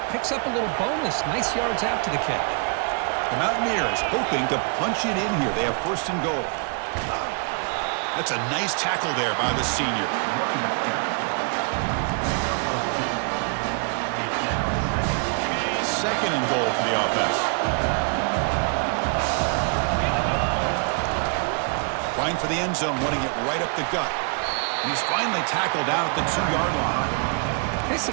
picks up a little bonus. Nice yards after the catch. The Mountaineers hoping to punch it in here. They have 1st and goal. That's a nice tackle there by the senior. Second and goal for the offense. Trying for the end zone, wanting it right up the gut. And he's finally tackled out at the 2-yard line. It's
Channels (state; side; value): quieter; left; 39.6 dB